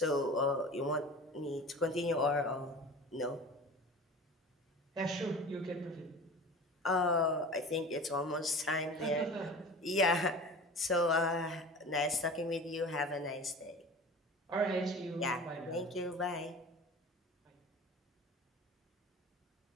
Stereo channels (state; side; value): normal; both; correlation 0.37